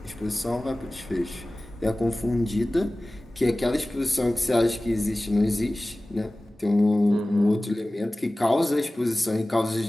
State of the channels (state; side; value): normal; both; correlation 0.97